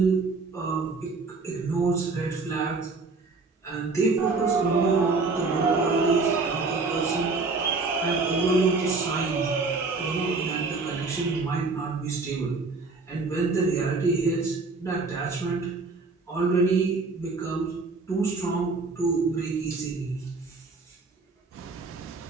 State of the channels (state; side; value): quieter; left; 4.0 dB